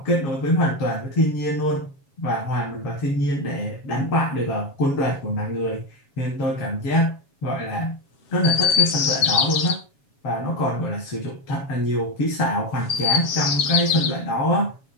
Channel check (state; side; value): late; right; 7.2 ms